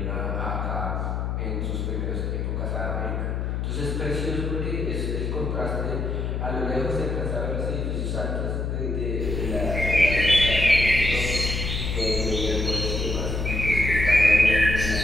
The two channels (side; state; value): left; noise; hum, 1 dB below the sound